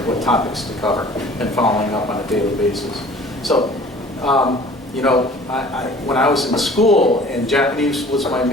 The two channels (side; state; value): both; normal; correlation 0.48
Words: what topics to cover, and following up on a daily basis. So, when I was in school and Japanese was my